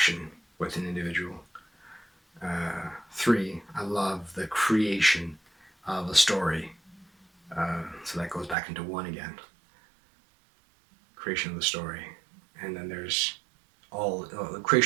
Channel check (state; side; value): drops out; left; at 8.6 s